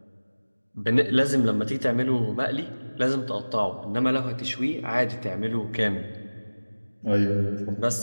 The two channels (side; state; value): both; inverted; correlation -1.00